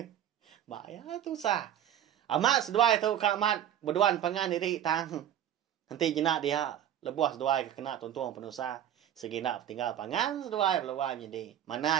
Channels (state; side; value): quieter; left; 10.7 dB